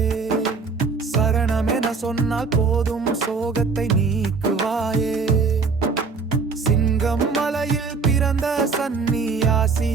சரணமென சொன்னால் போதும் சோகத்தை நீக்குவாயே. சிங்கம் மலையில் பிறந்த சந்நியாசி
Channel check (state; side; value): quieter; left; 4.7 dB